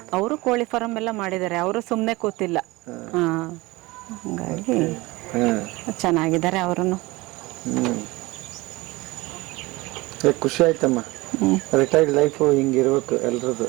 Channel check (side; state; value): left; quieter; 21.7 dB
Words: ಅವರು ಕೋಳಿ ಫಾರಂ ಎಲ್ಲ ಮಾಡಿದ್ದಾರೆ. ಅವರು ಸುಮ್ನೆ ಕೂತಿಲ್ಲ. ಹಂಗಾಗಿ ಚೆನ್ನಾಗಿದ್ದಾರೆ ಅವರನ್ನು. ಖುಷಿ ಆಯ್ತಮ್ಮ. ರಿಟೈರ್ಡ್ ಲೈಫ್ ಹಿಂಗಿರ್ಬೇಕು ಎಲ್ರದ್ದು.